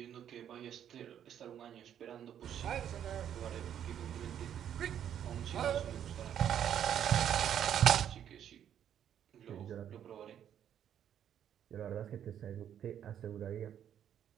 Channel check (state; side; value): quieter; left; 9.7 dB